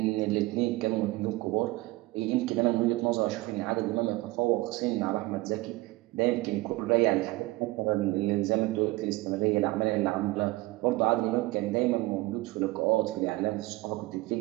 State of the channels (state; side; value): quieter; left; 20.5 dB